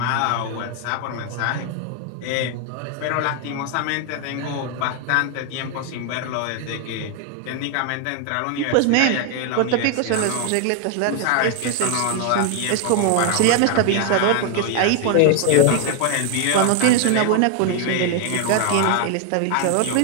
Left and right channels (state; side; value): different; both; correlation 0.00